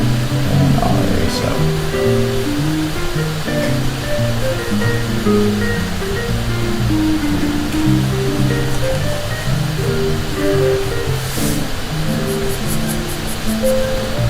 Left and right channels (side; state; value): both; identical; correlation 1.00